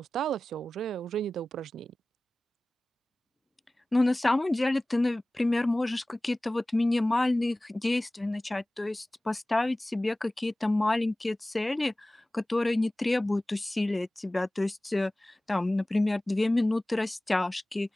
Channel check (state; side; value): normal; both; correlation 0.98